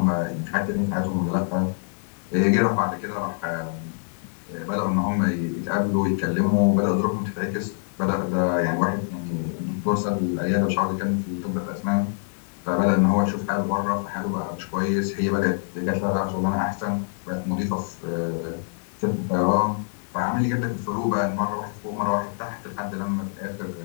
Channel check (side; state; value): right; silent; digital silence